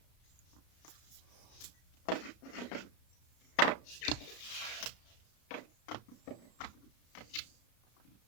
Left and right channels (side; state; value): right; late; 33 ms